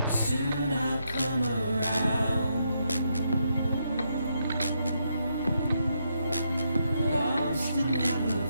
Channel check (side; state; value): both; inverted; correlation -0.79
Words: Soon I'll come around. Lost and never